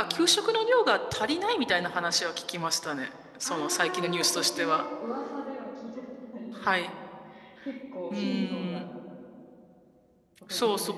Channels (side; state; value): both; identical; correlation 1.00